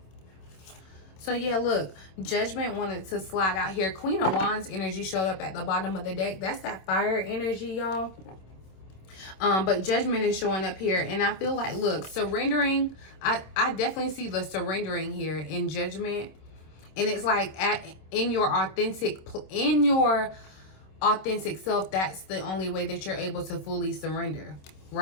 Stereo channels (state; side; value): late; right; 26 ms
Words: So yeah, look, Judgment wanted to slide out here. Queen of Wands energy showed up at the bottom of the deck. That's that fire energy, y'all. But Judgment is showing up here, and I feel like, look, surrendering. I definitely see the surrendering here in Judgment. And it's like in your authentic self, that's the only way that you're able to fully surrender,